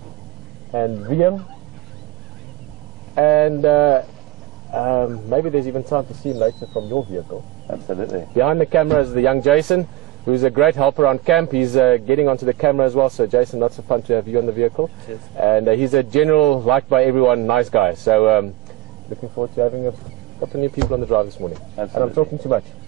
And Liam. And maybe there's even time to see him later from your vehicle. Absolutely. Behind the camera is the young Jason, who's a great helper on camp. He's getting onto the camera as well. So Jason, lots of fun to have you on the vehicle. Cheers. And he's a general, liked by everyone, nice guy. So looking forward to having a couple of new people on the drive this morning. Absolutely. And I'm talking too much.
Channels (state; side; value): quieter; left; 17.1 dB